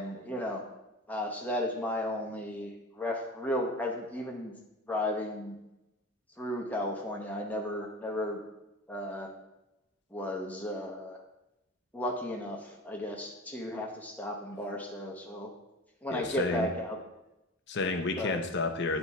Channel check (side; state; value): both; normal; correlation 0.32